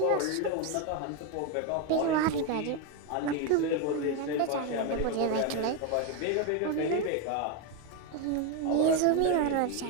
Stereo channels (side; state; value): both; different; correlation 0.02